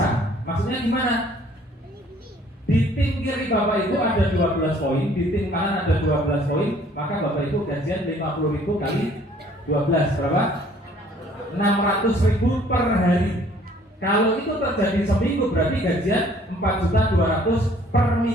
Maksudnya gimana? Di tim kiri Bapak Ibu ada 12 poin, di tim kanan ada 12 poin, maka Bapak Ibu gajian 50.000 kali 12 berapa? 600.000 per hari. Kalau itu terjadi seminggu berarti gajian 4.200.000 per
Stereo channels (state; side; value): normal; both; correlation 0.58